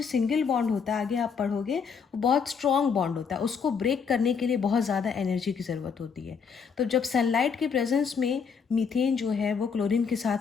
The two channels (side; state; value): right; quieter; 6.1 dB